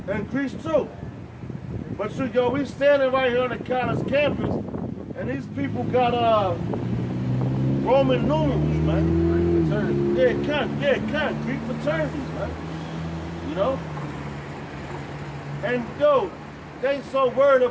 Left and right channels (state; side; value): identical; both; correlation 1.00